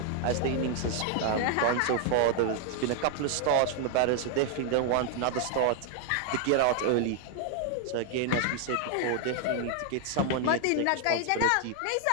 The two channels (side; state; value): both; different; correlation 0.00